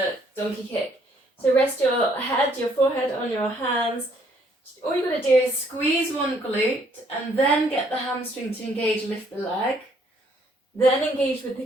donkey kick. So rest your head, your forehead on your hands. All you've got to do is squeeze one glute and then get the hamstring to engage, lift the leg. Then engage with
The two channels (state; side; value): normal; both; correlation 0.66